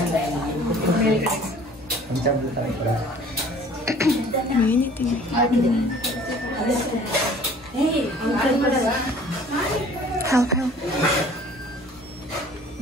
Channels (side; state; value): both; normal; correlation 0.50